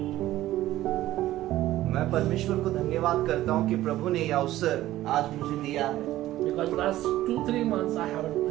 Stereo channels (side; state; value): left; quieter; 14.9 dB